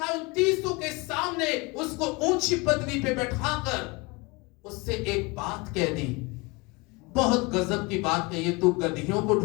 है 29 के सामने उसको ऊंची पदवी पे बैठाकर उससे एक बात कह दी, बहुत गजब की बात कही है। तू गधियों को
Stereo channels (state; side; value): quieter; right; 25.9 dB